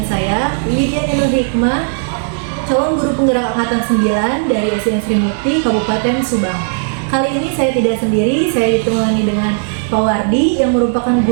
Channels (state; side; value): silent; left; digital silence